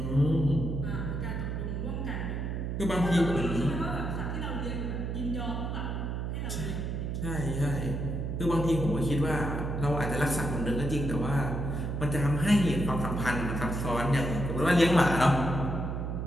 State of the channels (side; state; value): right; noise; hum, 3 dB below the sound